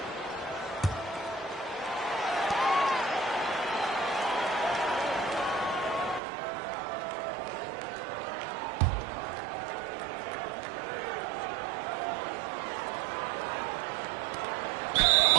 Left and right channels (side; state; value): left; drops out; at 6.2 s